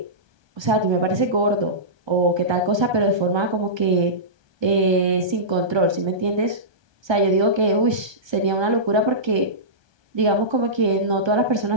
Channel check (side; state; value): left; late; 1.3 ms